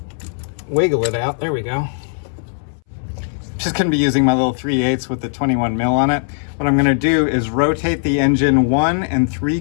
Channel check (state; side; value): silent; right; 66 dB below the other